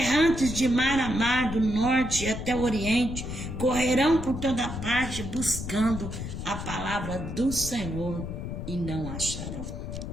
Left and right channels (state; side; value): noise; left; rumble, 6 dB below the sound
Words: de mar a mar, do norte até o oriente, correrão por toda parte buscando a palavra do Senhor e não acharão.